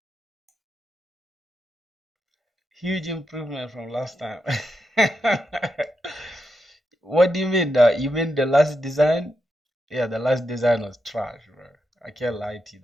Huge improvement from last time. What do you mean? You mean the last design? Yeah, the last design was trash, bro. I can't lie to you.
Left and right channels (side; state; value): both; normal; correlation 0.85